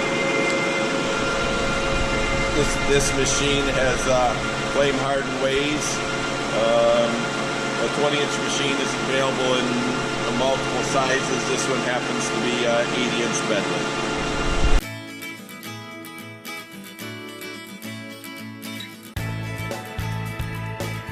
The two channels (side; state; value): both; identical; correlation 1.00